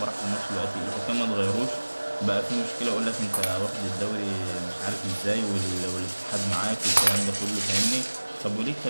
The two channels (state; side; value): inverted; both; correlation -1.00